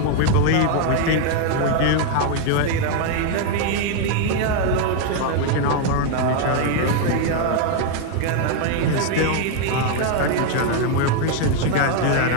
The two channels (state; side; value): different; both; correlation 0.01